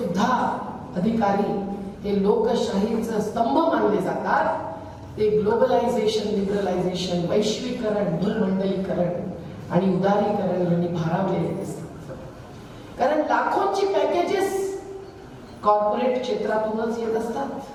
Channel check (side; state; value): both; identical; correlation 1.00